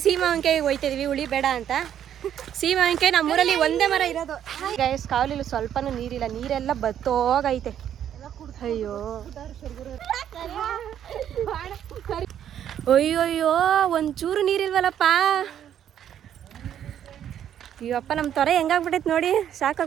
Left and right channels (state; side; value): quieter; left; 10.0 dB